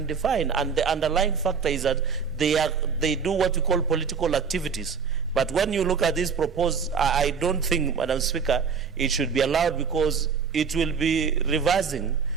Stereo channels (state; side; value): quieter; left; 6.0 dB